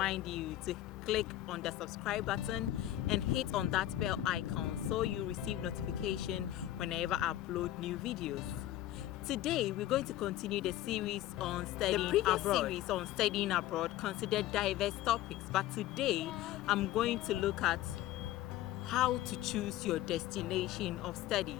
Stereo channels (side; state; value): right; quieter; 13.9 dB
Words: you to click on the subscribe button and hit on that bell icon so you receive notification whenever I upload new videos. Today we're going to continue the series on studying abroad. Series on studying abroad considered diverse topics, but today I'm going to look at how to choose your destination of study.